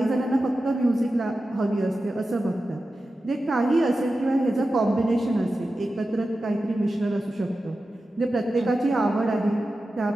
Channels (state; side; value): normal; both; correlation 0.93